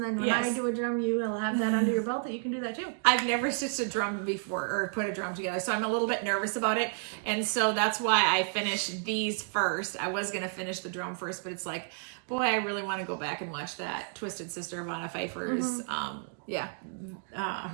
then when I do a drum, you will have that under your belt that you can do that too. I've never stitched a drum before, or put a drum together, so I'm a little bit nervous about it. And so that's why I finished these first. I was gonna finish the drum first, but it's like, boy, I really want to go back and watch that Twisted Sister of Anna Pfeiffer's,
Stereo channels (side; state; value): left; silent; 57 dB below the other